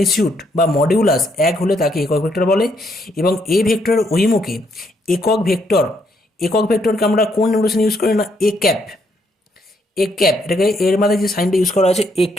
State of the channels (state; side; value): normal; both; correlation 0.73